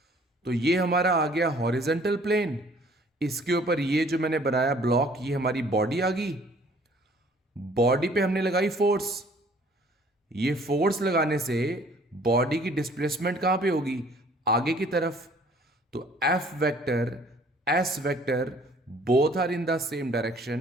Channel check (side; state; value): both; normal; correlation 0.56